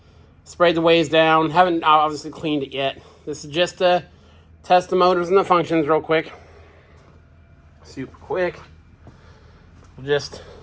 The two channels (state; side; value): identical; both; correlation 1.00